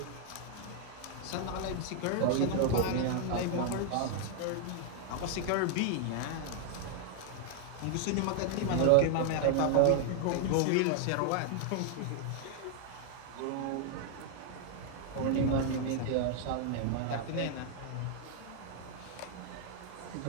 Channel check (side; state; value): both; different; correlation 0.00